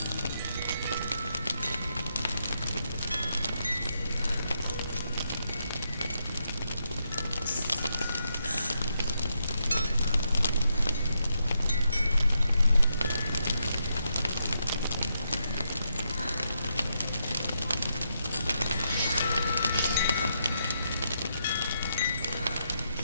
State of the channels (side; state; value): both; inverted; correlation -0.81